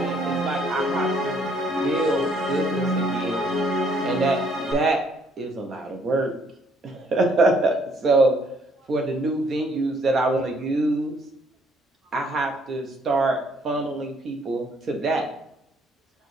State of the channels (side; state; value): both; normal; correlation 0.65